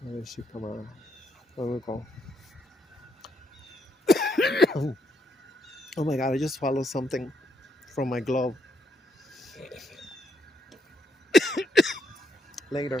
Where did she come out? Where we go? Oh my God, I just swallowed something from my glove.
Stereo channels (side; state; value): both; normal; correlation 0.77